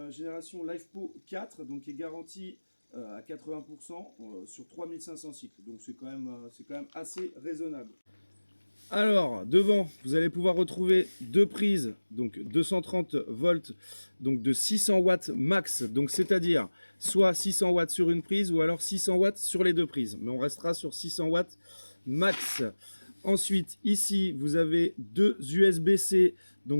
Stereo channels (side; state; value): both; inverted; correlation -1.00